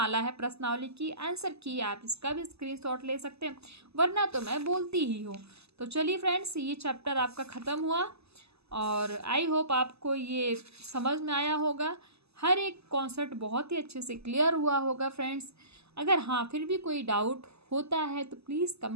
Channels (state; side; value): late; left; 0.79 ms